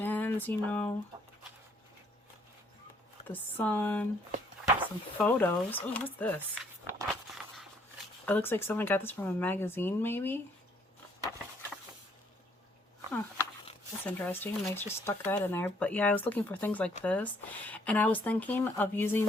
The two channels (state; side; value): normal; both; correlation 0.66